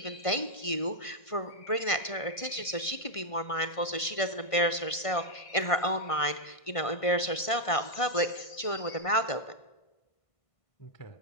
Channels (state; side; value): late; right; 1.5 ms